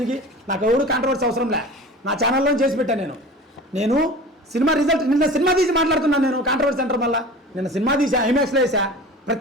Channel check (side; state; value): both; normal; correlation 0.38